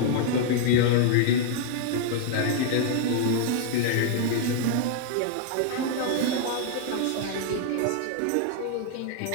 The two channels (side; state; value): both; different; correlation 0.00